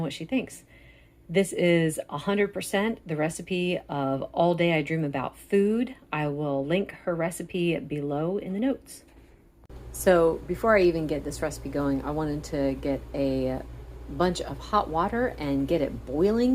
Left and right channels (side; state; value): both; identical; correlation 1.00